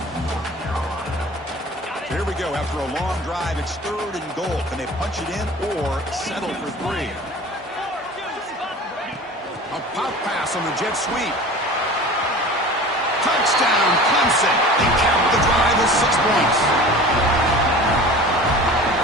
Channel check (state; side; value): normal; both; correlation 0.39